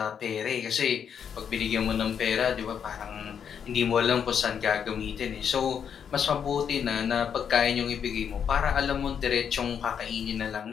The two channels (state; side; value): quieter; right; 7.7 dB